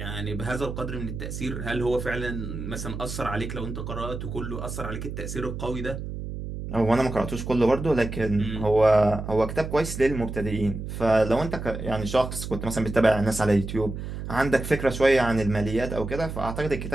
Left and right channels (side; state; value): right; noise; hum, 7 dB below the sound